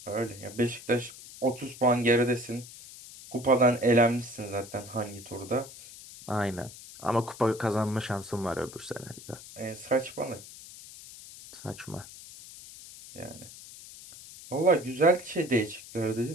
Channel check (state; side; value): noise; left; hiss, 16 dB below the sound